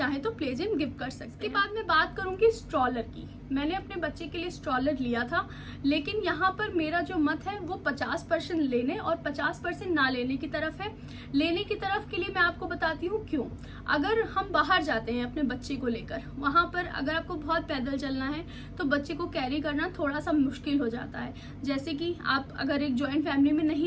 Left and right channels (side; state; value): both; identical; correlation 1.00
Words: तो प्ले जिम गिफ्ट कर सकते हैं। इसके बाद मैं बात करूंगी स्ट्रॉलर की। मैंने अपने बच्चे के लिए स्ट्रॉलर लिया था, लेकिन यहाँ पर मेरा जो मत है वो 50% लेने और 50% ना लेने की तरफ है। लेने की तरफ के लिए मैं आपको बताती हूँ क्यों। अगर हम बाहर जाते हैं अपने बच्चे को लेकर, वहाँ पर अगर आपको बहुत पैदल चलना है तो बच्चे को कैरी करना थोड़ा सा मुश्किल हो जाता है। जैसे कि आप अगर एक जॉइंट फैमिली में